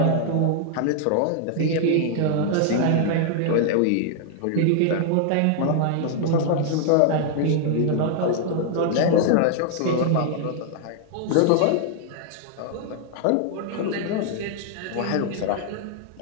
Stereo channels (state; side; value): different; both; correlation 0.00